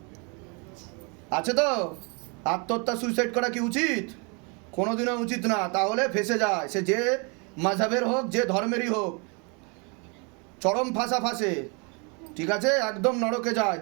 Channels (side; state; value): left; quieter; 33.2 dB